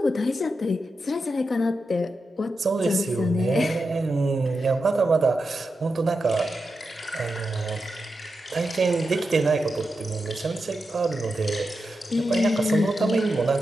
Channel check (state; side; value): normal; both; correlation 0.89